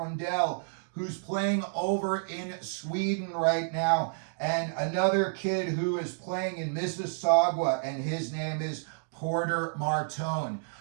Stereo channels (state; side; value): silent; left; digital silence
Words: who's playing over in Sweden right now, and another kid who is playing in Mississauga, and his name is Porter Martone.